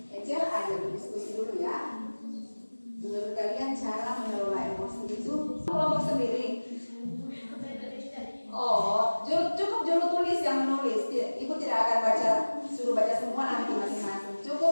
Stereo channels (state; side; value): inverted; both; correlation -1.00